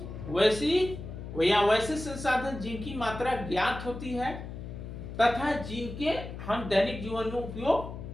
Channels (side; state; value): left; noise; hum, 9 dB below the sound